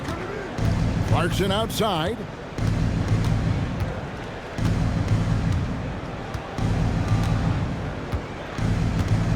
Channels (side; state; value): both; identical; correlation 1.00